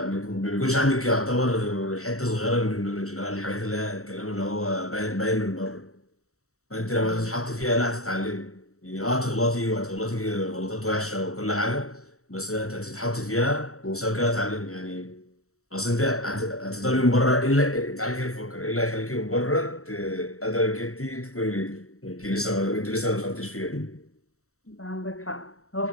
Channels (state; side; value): late; right; 0.64 ms